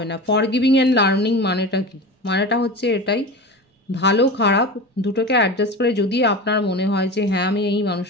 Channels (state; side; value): normal; both; correlation 0.30